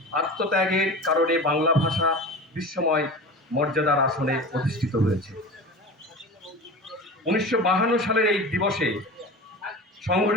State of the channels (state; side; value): normal; both; correlation 0.33